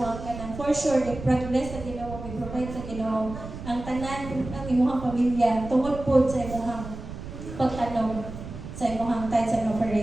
ang kanang for sure i-progress sa Ginoo, i-provide sa Ginoo ang tanan ang imong pamilya tungod pud sa imong pagtanong sa imong tithes and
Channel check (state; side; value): noise; right; rumble, 11 dB below the sound